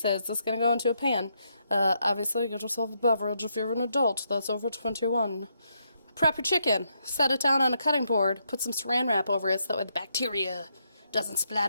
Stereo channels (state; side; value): inverted; both; correlation -0.78